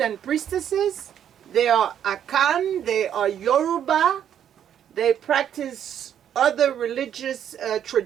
priestesses. They are Akan, they are Yoruba, they practice other religious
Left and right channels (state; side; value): quieter; left; 9.6 dB